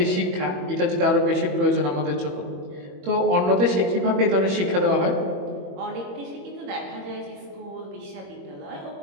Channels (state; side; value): late; left; 21 ms